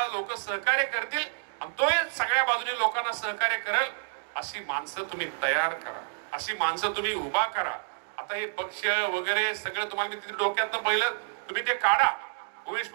लोक सहकार्य करतील आणि तो सगळ्या बाजूनी लोकांना सहकार्य करेल अशी माणसं तुम्ही तयार करा, अशी माणसं तुम्ही उभा करा. आता हे पक्ष वगैरे सगळं तुम्हाला मी तिथे डोक्यातनं पहिलं तुम्ही ते काढा. उमेश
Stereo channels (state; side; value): silent; left; digital silence